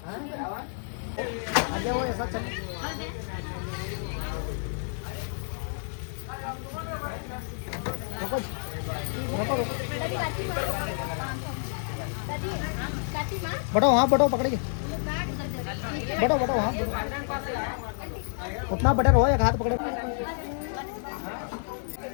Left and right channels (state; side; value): silent; right; 58 dB below the other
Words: आ जाओ ऐसा चल बढ़ो हाँ बढ़ो पकड़िए बढ़ो बढ़ो हाथ उतना बटन हो एक हाथ पकड़े